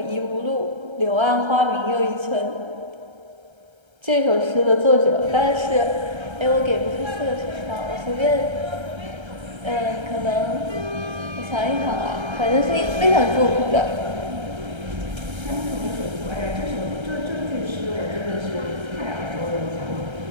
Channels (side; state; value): left; late; 1.3 ms